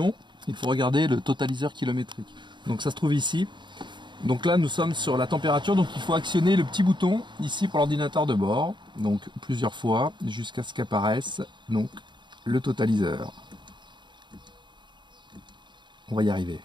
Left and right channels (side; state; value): left; late; 0.22 ms